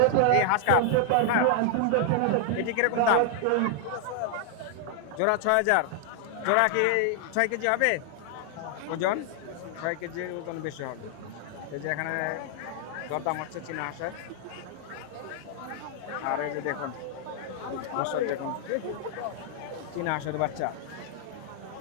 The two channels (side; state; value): both; different; correlation 0.00